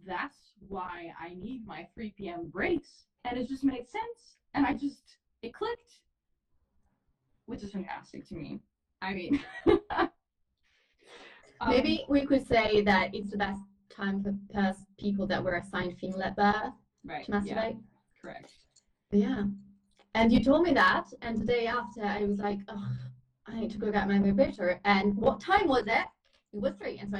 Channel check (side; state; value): both; identical; correlation 1.00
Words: that's why I need my 3 p.m. breaks. And it just made sense. And it clicked, which is fantastic to me. I mean, Maybe we could say that it's the best time for people that were assigned female at birth to masturbate. Yeah, correct. Yeah. And you told me that, and the day after I was like, oh, I need to go get my vibrator. And what time was it? It was 3. And so